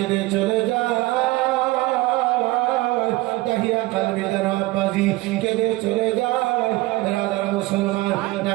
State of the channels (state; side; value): quieter; left; 19.7 dB